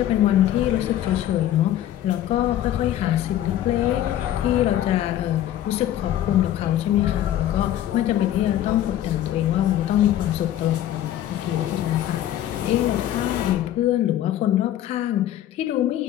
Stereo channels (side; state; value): right; quieter; 12.2 dB